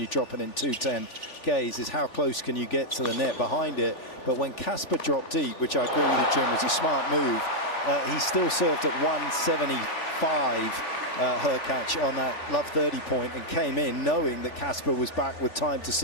drop it in 210 gaze is how close can you get to the net behind it. But when Casper dropped deep, which I agree with you, Jim, was a smart move, he still served at 175 Hurkacz on that love 30 point and came in knowing that Casper was back with time to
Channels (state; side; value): late; right; 3.4 ms